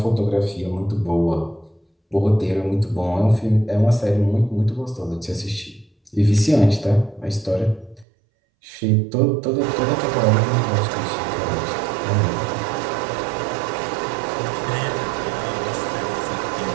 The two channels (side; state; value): left; drops out; at 8.1 s